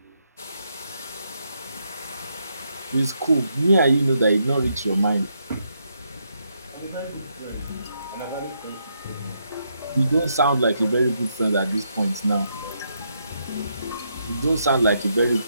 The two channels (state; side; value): inverted; both; correlation -0.78